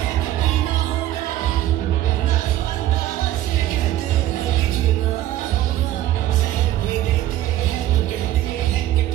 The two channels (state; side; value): quieter; left; 13.6 dB